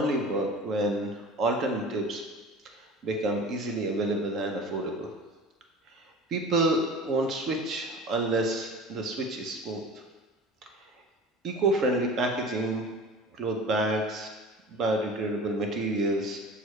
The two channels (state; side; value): normal; both; correlation 0.38